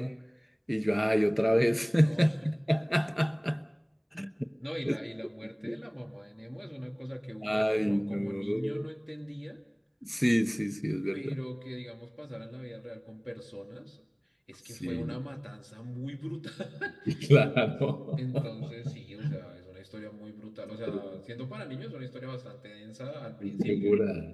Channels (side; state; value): both; identical; correlation 1.00